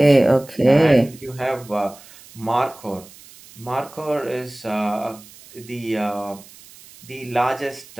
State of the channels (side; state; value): right; noise; hiss, 22 dB below the sound